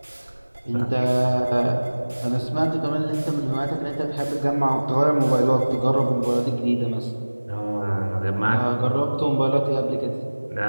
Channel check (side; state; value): both; inverted; correlation -1.00